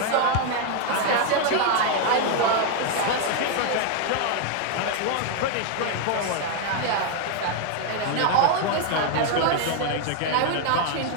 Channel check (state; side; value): different; both; correlation 0.01